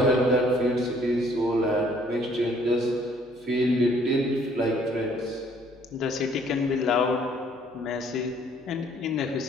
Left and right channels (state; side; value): normal; both; correlation 0.61